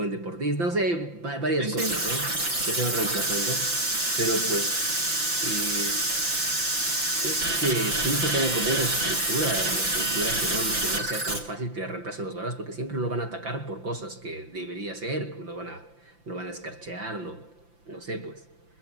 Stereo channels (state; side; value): late; left; 5.9 ms